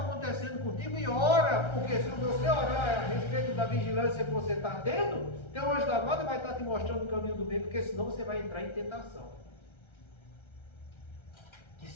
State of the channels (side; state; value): right; late; 1.3 ms